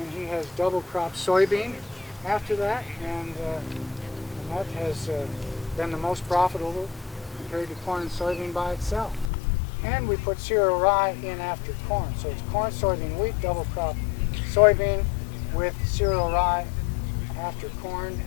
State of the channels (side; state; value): right; drops out; at 9.3 s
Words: he has double crop soybean after that, and that has been the most profitable compared to corn and soybean by itself. And we put cereal rye in after corn, so it's corn, soybean, wheat, double crop soybean with cereal rye after corn,